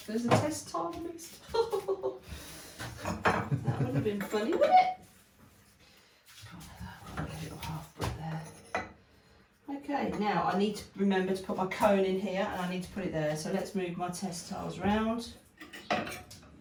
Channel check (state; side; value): identical; both; correlation 1.00